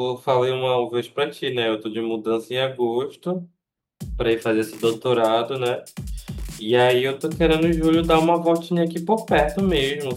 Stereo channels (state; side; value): identical; both; correlation 1.00